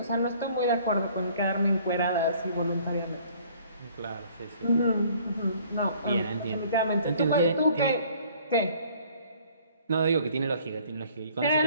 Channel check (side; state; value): both; inverted; correlation -0.56